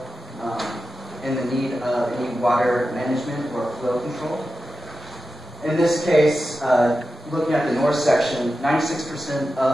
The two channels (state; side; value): normal; both; correlation 0.92